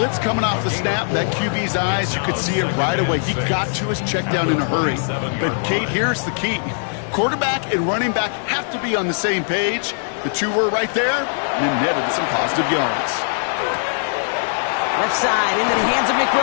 coming off the snap, that QB's eyes, you could see it right away. He got to his check down in a hurry. But, Kate, here's the key. Quarterback and running back have to be on the same page. The two were right there, and then netted some positive yards. Left side into the hands of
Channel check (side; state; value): right; silent; digital silence